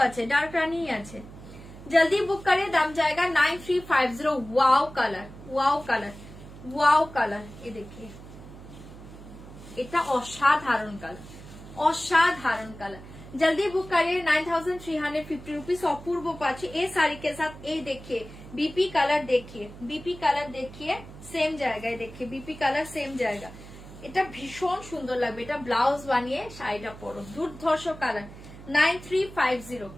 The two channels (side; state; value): right; noise; hum, 16 dB below the sound